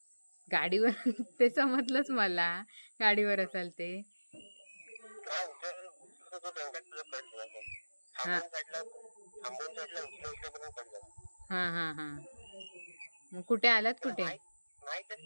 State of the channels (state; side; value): inverted; both; correlation -1.00